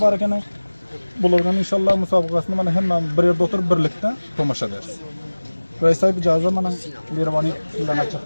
var ekan bulardan inşallah musabakasını mana hemen bir yerde oturup birlikte tomaşa ederiz. Reis sahip icazı mana Mirvani sizden açık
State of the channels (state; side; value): inverted; both; correlation -1.00